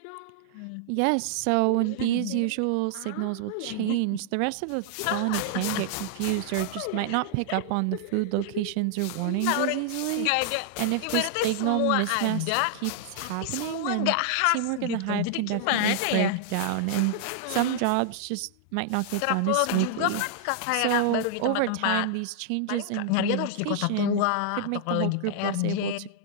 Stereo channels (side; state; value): both; different; correlation -0.01